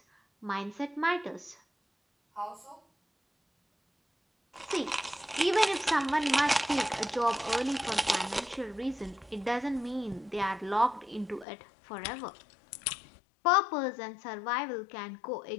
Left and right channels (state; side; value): drops out; right; at 11.5 s